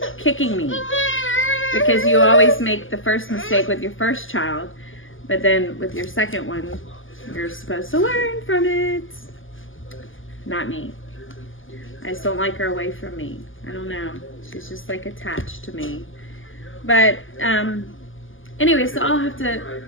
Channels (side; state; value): right; late; 0.58 ms